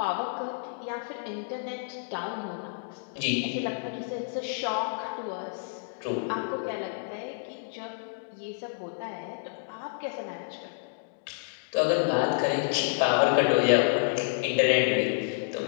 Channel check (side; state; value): right; silent; digital silence